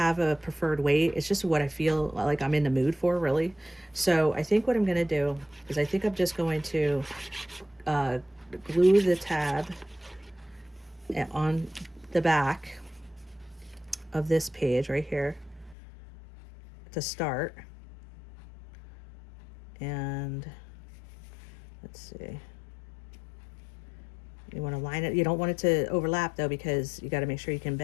a preferred way. It's just what I feel like I'm in the mood for, really. So I think what I'm going to do is I think I'm just going to glue the tab on the back of this page right here to start. And let's see, you want to line it, you don't want it to overlap though, because you got to make sure you can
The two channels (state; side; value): drops out; right; at 15.8 s